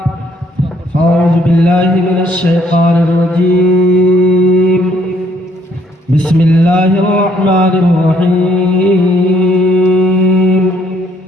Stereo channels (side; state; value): both; normal; correlation 0.66